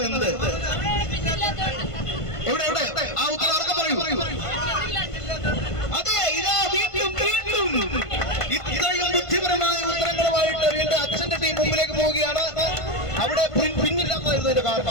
എന്ത്? എവിടെ? ആ ഉത്തരം ആർക്കെ പറയൂ. അതെ, ഇതാ വീണ്ടും ഇത്രയും ബുദ്ധിപരമായ ഉത്തരങ്ങളുമായിട്ട് വീണ്ടും അച്ഛന്റെ ടീം മുമ്പിലേക്ക് പോവുകയാണ്. അവിടെ പിന്നില്ലാത്തതായിരുന്നു ഇതിന്റെ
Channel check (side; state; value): right; late; 1.5 ms